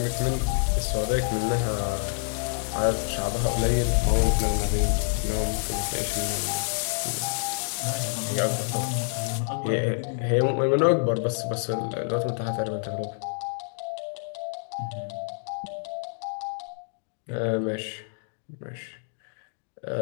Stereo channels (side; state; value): right; silent; digital silence